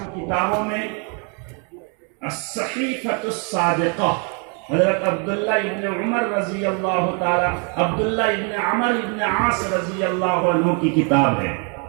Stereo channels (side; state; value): left; quieter; 37.6 dB